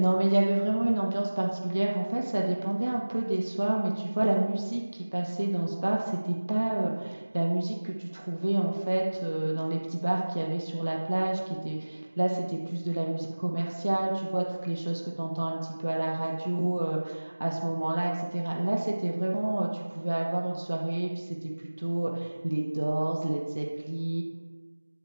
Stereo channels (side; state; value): both; inverted; correlation -1.00